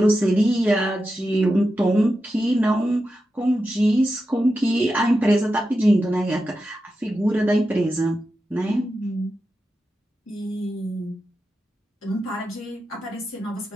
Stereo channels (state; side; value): normal; both; correlation 0.90